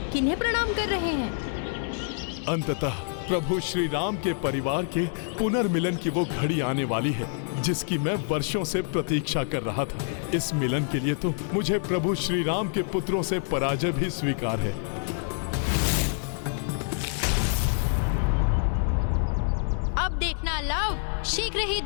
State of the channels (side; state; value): right; silent; digital silence